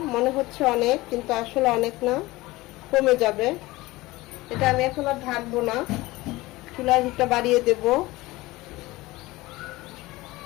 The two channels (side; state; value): right; quieter; 19.9 dB